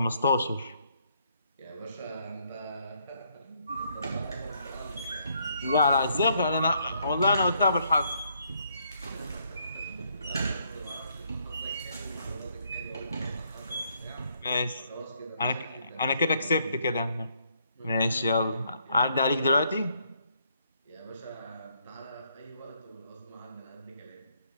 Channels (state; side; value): inverted; both; correlation -0.71